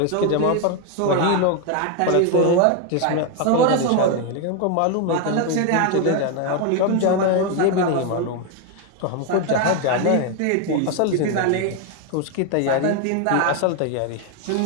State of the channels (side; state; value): both; different; correlation 0.01